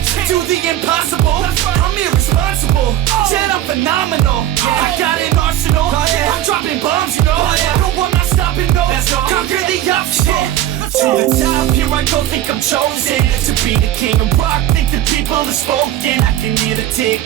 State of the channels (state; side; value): quieter; left; 12.7 dB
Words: do the impossible. I'm irresponsible, yet I'm phenomenal. I got an arsenal, I'm dropping bombs, you know. No, I'm not stopping, no. Conquer the obstacle. To the top, here I go, think I'm chosen to be the king of rock, think the people have spoken. I can hear the